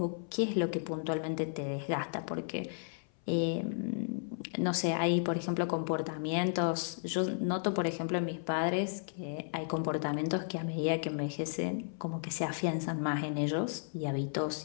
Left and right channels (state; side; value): silent; right; 55 dB below the other